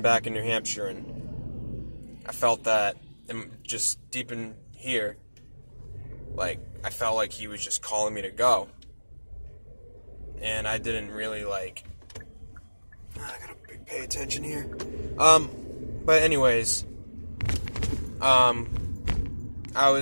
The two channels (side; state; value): both; inverted; correlation -1.00